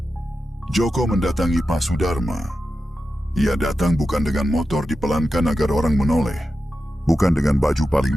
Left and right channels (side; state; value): both; normal; correlation 0.91